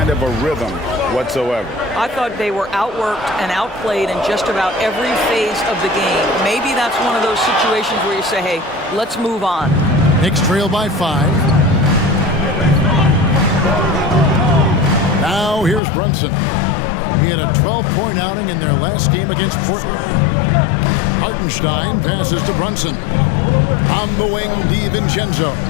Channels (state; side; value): drops out; right; at 15.8 s